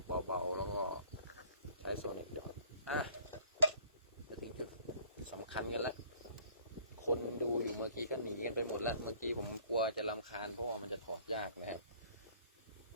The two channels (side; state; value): both; inverted; correlation -0.55